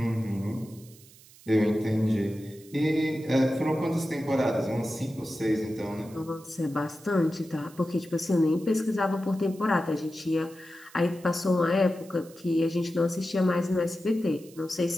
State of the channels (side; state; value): right; noise; hiss, 23 dB below the sound